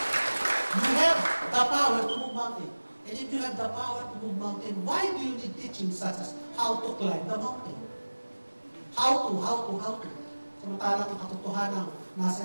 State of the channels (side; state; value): both; inverted; correlation -1.00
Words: You have the power to move mountain. And if you have the power to move mountain, why do you need teaching such as how to climb the mountain? How to? Samantalang ang katotohanan nasa